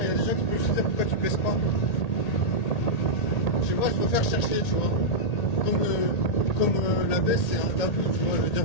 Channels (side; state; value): right; late; 1.8 ms